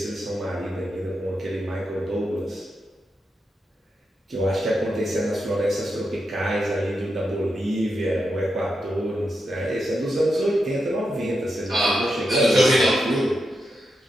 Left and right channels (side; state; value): both; normal; correlation 0.86